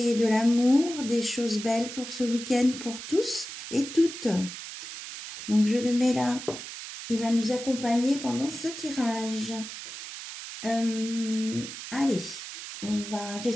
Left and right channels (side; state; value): right; noise; hiss, 10 dB below the sound